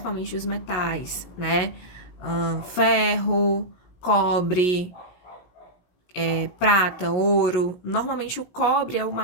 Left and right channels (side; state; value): right; late; 16 ms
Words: os metais, né? Ferro, cobre, prata, ouro. Normalmente o cobre é o